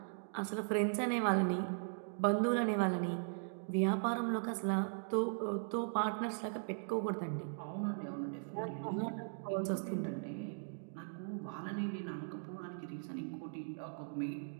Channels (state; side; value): silent; left; digital silence